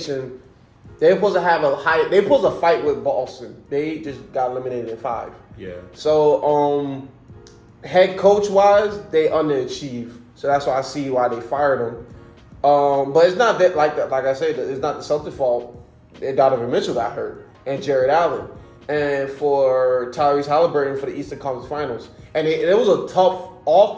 They were supposed to have they were supposed to fight with Boston. They just got eliminated in 5. Yeah. So head coach wise, they underachieved. So that's why I see why they fired him. But it's not that like I said, it's not the Celtics' fault. Donovan Mitchell got hurt and Jared Allen, and for Tyrese Halliburton for the Eastern Conference Finals, and it was a tough. All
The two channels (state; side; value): identical; both; correlation 1.00